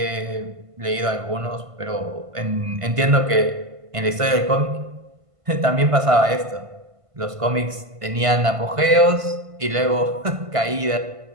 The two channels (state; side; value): late; left; 1.5 ms